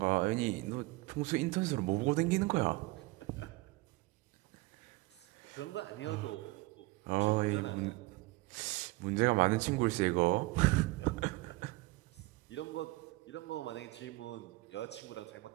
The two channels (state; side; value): quieter; left; 21.6 dB